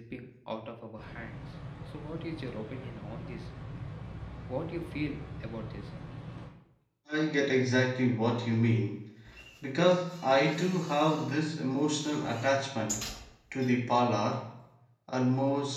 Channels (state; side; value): identical; both; correlation 1.00